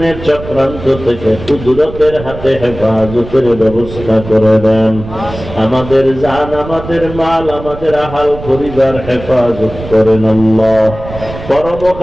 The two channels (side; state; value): right; noise; rumble, 12 dB below the sound